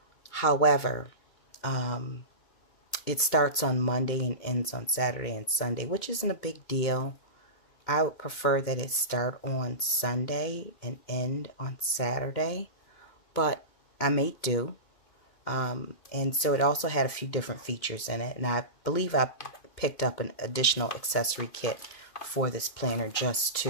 However, it starts on Monday and ends on Saturday and Sunday, which isn't a big deal. I would prefer that it start on Sunday and end on Saturday, but I may do. And so it also had a few different features in it, and I believe I picked up an additional accessory kit for this planner just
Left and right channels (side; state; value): right; late; 2.2 ms